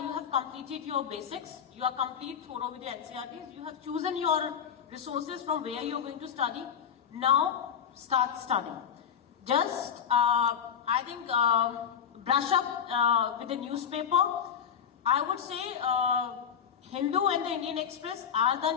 completed your basics. You are complete thorough with the NCERTs. You have chosen your resources from where you're going to study. Now start studying. Just I think brush up with the newspaper. I would say Hindu and the Indian Express are the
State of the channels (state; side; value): quieter; right; 8.0 dB